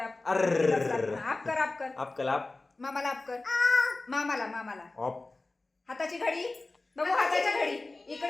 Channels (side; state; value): right; quieter; 3.2 dB